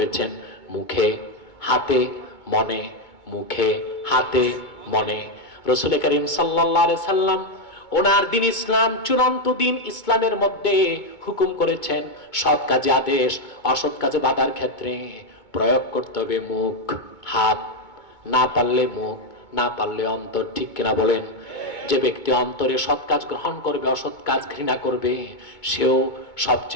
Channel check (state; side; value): late; right; 2.2 ms